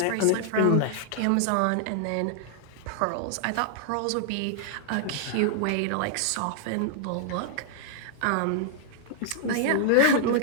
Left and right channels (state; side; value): different; both; correlation -0.01